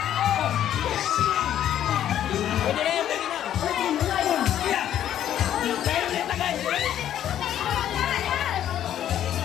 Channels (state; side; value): quieter; right; 11.0 dB